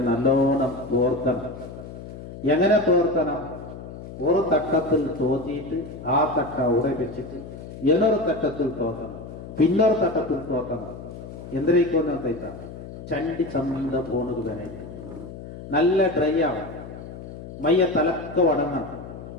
നല്ലോണം തോർത്തണം. എങ്ങനെ തോർത്തണം? ഒരു തട്ടത്തിൽ തോത്തിയിട്ട് ആ തട്ട ഉറപ്പിച്ചിട്ട് എന്നൊരു തട്ടത്തിൽ തോത്തണം, പിന്നൊരു തട്ടത്തിൽ തോത്തണം. എന്തിനേക്കോന്ന് തയ്ത്ത ചണ്ടി ചന്ത പോണത് വേണേ നല്ല ഡ്രൈ ആവും, മയ്യ തലക്ക വടങ്ങണം.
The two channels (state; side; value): noise; left; hum, 12 dB below the sound